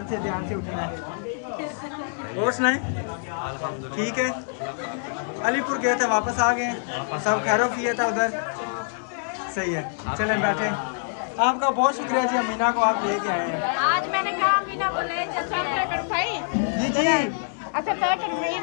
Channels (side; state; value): right; silent; digital silence